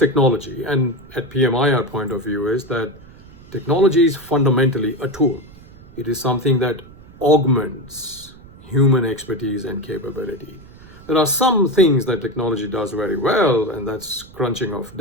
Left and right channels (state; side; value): noise; right; rumble, 21 dB below the sound